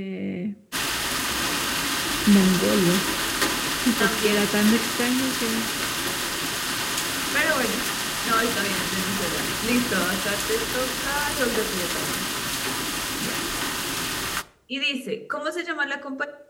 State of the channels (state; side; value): identical; both; correlation 1.00